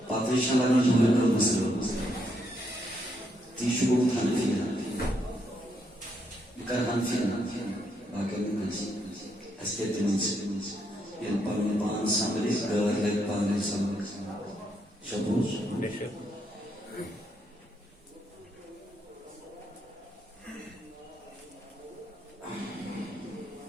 پاتریشن لگنا جمعہ کر مسلم تیشو کو حنفینا بکر حنفینا باقی منسی اسکیت منسی یہ پرمی بان سامری گھر لگ پانے سامری شبوز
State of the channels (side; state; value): both; normal; correlation 0.76